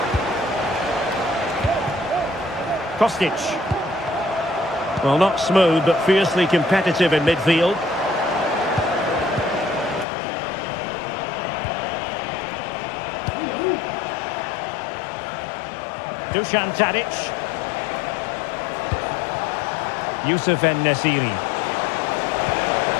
Kostic. Well, not smooth, but fiercely competitive in midfield. Dusan Tadic. Youssef En-Nesyri.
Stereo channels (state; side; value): drops out; right; at 10.1 s